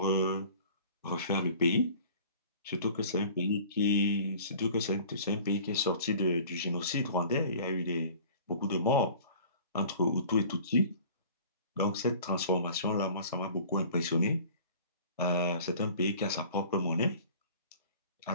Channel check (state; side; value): inverted; both; correlation -0.46